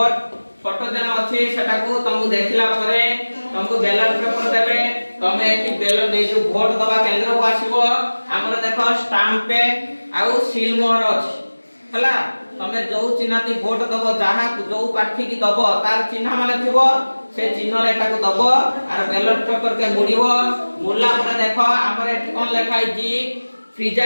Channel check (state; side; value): inverted; both; correlation -1.00